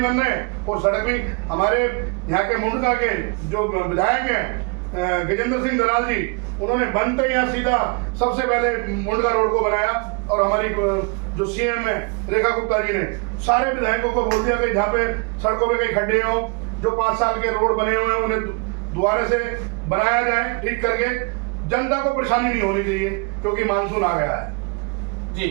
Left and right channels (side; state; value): left; quieter; 32.9 dB